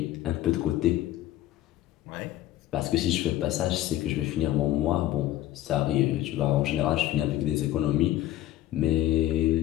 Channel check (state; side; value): quieter; right; 14.3 dB